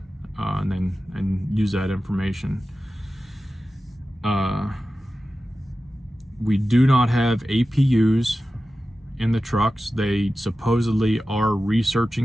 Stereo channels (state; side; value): normal; both; correlation 0.94